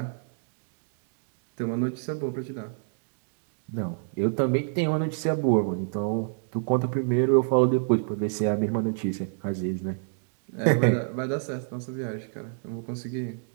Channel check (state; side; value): silent; left; digital silence